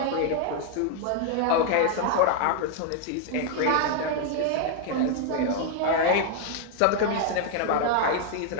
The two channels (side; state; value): both; different; correlation 0.00